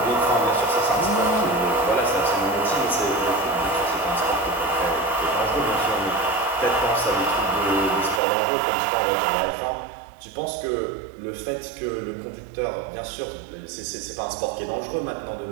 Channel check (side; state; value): left; drops out; at 8.2 s